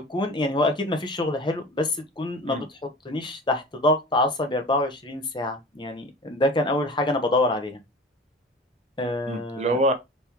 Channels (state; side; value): normal; both; correlation 0.38